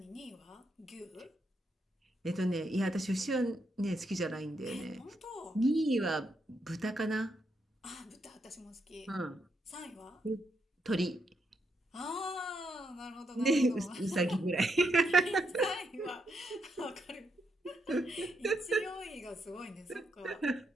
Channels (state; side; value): normal; both; correlation 0.79